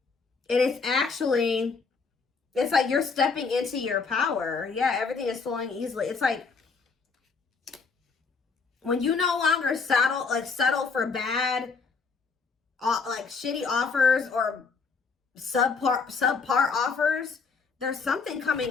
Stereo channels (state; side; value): quieter; right; 4.9 dB